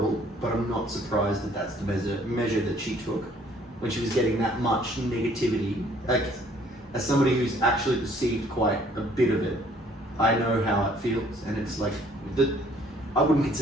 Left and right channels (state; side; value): normal; both; correlation 0.60